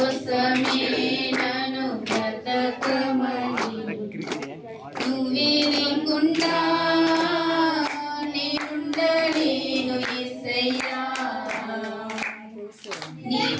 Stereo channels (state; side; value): identical; both; correlation 1.00